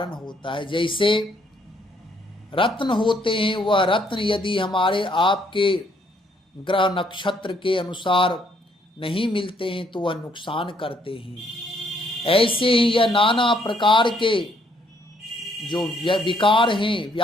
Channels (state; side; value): normal; both; correlation 0.69